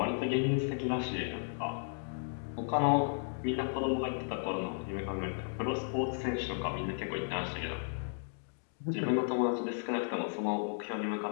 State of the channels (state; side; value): silent; right; digital silence